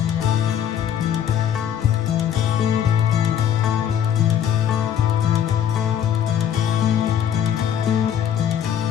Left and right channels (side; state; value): right; quieter; 9.3 dB